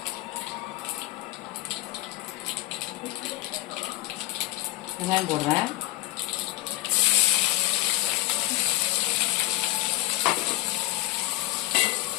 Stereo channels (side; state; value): right; quieter; 18.1 dB